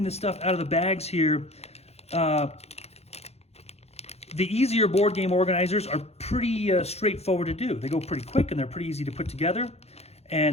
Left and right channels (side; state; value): right; late; 0.30 ms